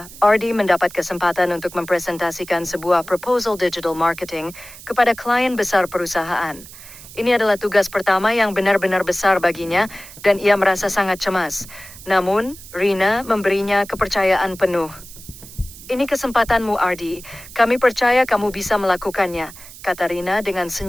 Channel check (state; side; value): noise; right; hiss, 17 dB below the sound